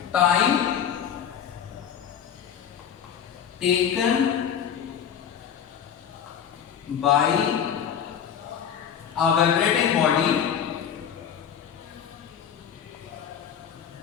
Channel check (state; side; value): quieter; right; 8.5 dB